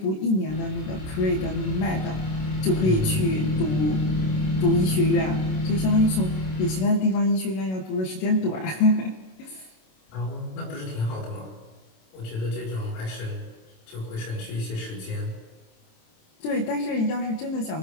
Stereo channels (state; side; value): late; right; 27 ms